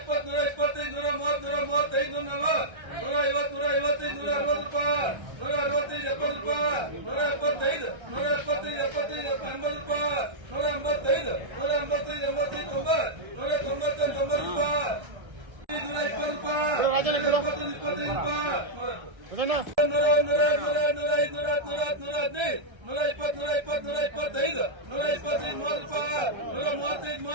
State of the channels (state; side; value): late; left; 1.3 ms